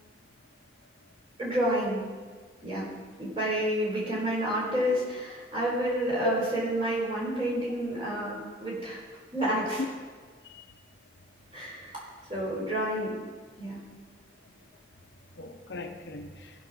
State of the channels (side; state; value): both; normal; correlation 0.45